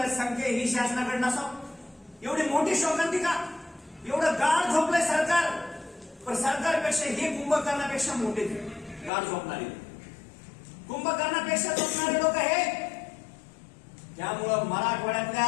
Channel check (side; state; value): right; drops out; at 9.1 s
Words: संख्या ही शासनाकडे नसावं? एवढी मोठी शोकांतिका, एवढं गाढ झोपलंय सरकार. पण सरकारपेक्षा हे कुंभकर्णापेक्षा मोठे गाढ झोपणारे, कुंभकर्णापेक्षा झोपणारे लोक हे. त्यामुळं